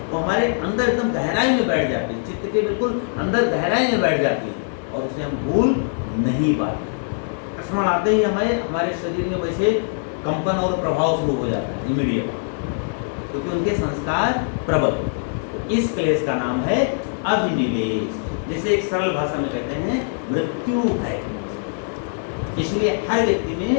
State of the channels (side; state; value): right; silent; 64 dB below the other